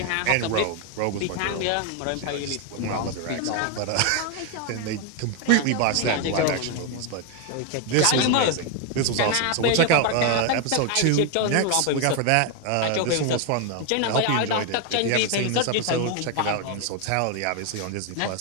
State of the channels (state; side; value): different; both; correlation 0.01